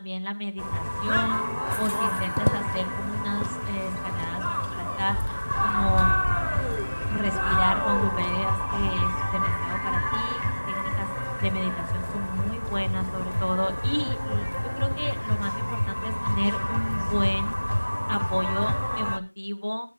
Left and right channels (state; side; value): inverted; both; correlation -1.00